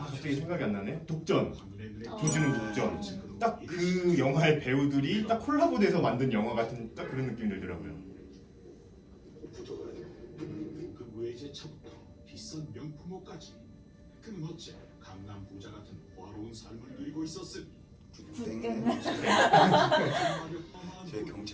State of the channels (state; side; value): identical; both; correlation 1.00